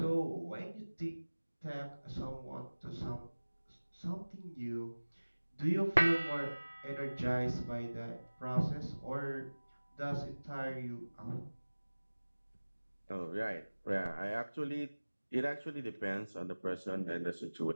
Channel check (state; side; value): inverted; both; correlation -1.00